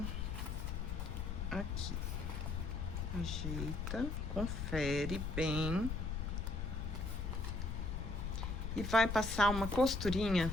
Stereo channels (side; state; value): left; noise; rumble, 2 dB below the sound